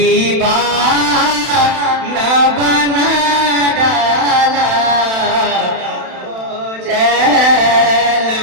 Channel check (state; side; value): late; left; 31 ms